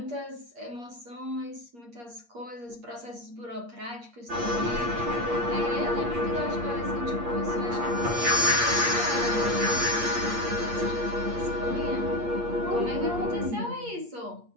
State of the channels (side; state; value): left; late; 8.5 ms